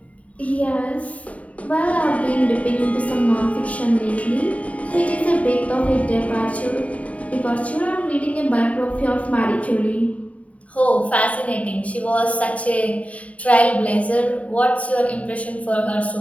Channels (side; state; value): right; late; 0.067 ms